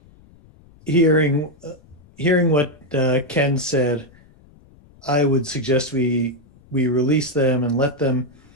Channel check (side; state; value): left; noise; rumble, 27 dB below the sound